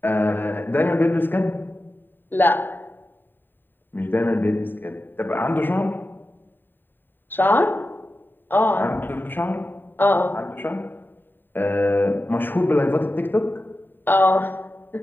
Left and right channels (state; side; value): late; right; 0.093 ms